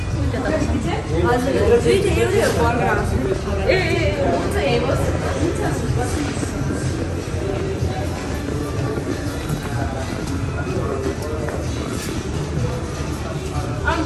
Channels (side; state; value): both; identical; correlation 1.00